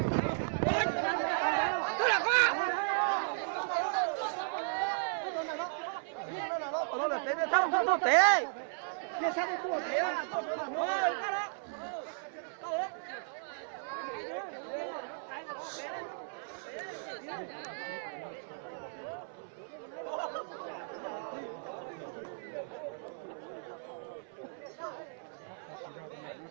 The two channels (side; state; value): left; silent; 54 dB below the other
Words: Tôi là qua. Nó là té xong nó té. Kia sao nó tua té à? Ôi, cái đó.